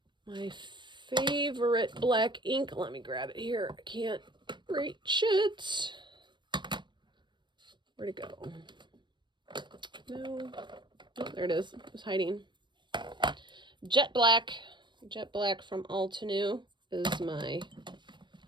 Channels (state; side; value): late; left; 0.22 ms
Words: my favorite black ink. Let me grab it here. I can't reach it. Where'd it go? No. Oh, there it is. It was hiding. Jet Black. Jet Black from Altenew is my